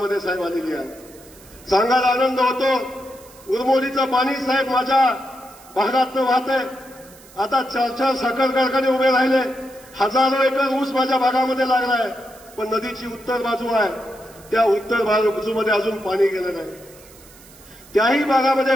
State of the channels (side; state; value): right; noise; hiss, 23 dB below the sound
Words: साहेब आलेली आहे. सांगायला आनंद होतो, उरमोलीचं पाणी साहेब माझ्या भागातनं वाहत आहे. आता 4 साखर कारखाने उभे राहिले, हजारो एकर ऊस माझ्या भागामध्ये लागलाय. पण नदीची उत्तर बाजू आहे, त्या उत्तर बाजूमध्ये अजून पाणी गेलं नाही. त्याही भागामध्ये